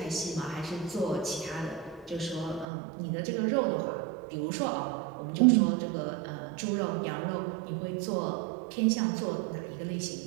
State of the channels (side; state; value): left; drops out; at 2.7 s